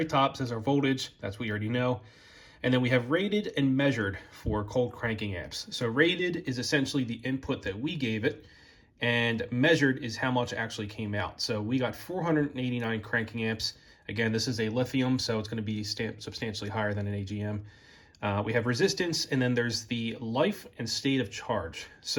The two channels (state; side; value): identical; both; correlation 1.00